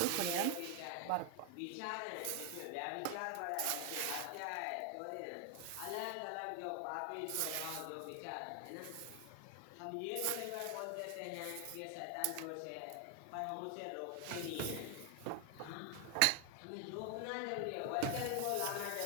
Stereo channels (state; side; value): different; both; correlation 0.00